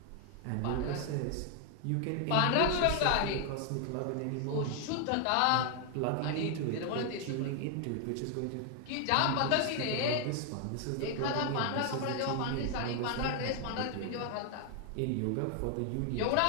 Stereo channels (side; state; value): both; different; correlation 0.00